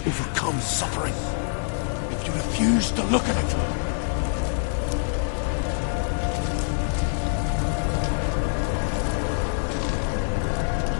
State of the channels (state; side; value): silent; right; digital silence